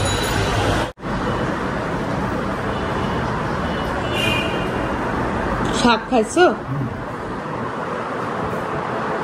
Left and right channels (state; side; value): identical; both; correlation 1.00